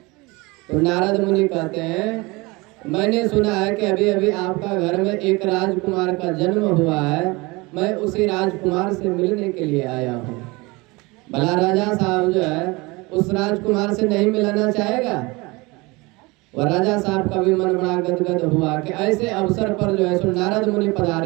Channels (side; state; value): left; quieter; 24.4 dB